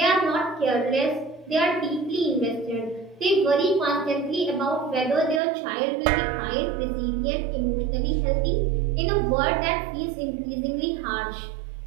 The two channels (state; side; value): drops out; left; at 5.4 s